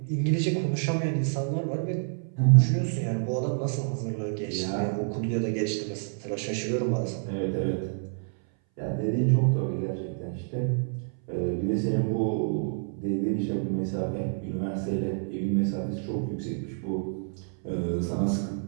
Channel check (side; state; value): left; silent; 59 dB below the other